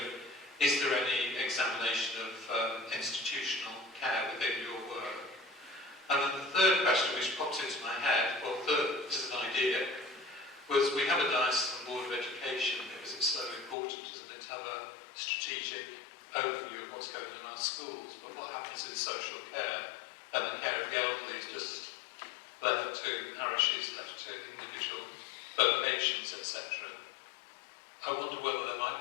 is there any examination of institutional care within your work? And then the third question, which popped into my head, well, this is an idea, was we have a diocesan board of education because it's so important, isn't it, to have a strategic overview of what's going on in our schools, but what happens in social care and the care of the elderly is just left to parishes, left to individual vocations, etc. I wonder whether there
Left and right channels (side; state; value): right; drops out; at 13.8 s